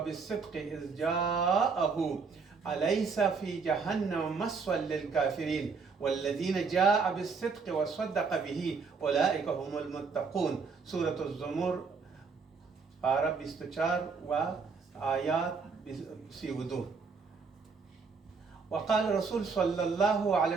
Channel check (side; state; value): left; quieter; 5.1 dB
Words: بالصدق إذ جاءه أليس في جهنم مثوى للكافرين والذين جاء بالصدق وصدق به أولئك هم المتقون. سورة الزمر پارہ 24 و آیات 32. وقال الرسول صلى الله عليه